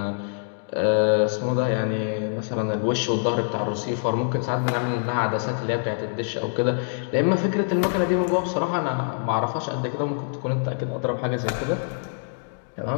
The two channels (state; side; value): silent; right; digital silence